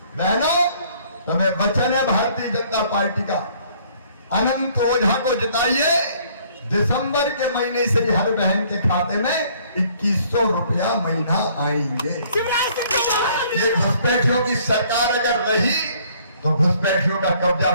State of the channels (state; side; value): inverted; both; correlation -0.60